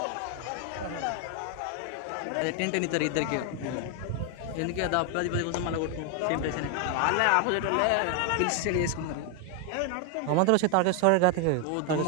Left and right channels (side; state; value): both; different; correlation 0.00